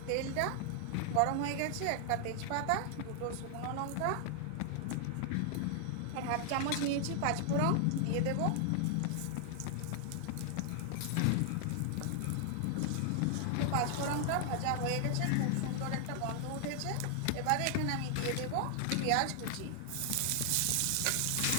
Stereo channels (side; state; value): both; different; correlation 0.00